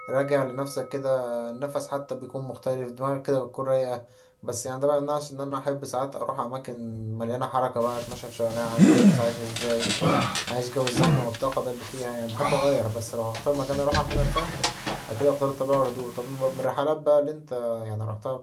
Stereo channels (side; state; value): both; identical; correlation 1.00